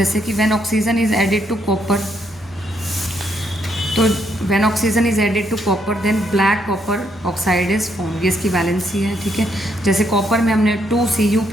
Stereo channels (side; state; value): both; normal; correlation 0.74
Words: कि when oxygen is added to copper, तो when oxygen is added to copper then black copper oxide is form, ये इसकी वैलेंसी है, ठीक है। जैसे कॉपर में हमने 2Cu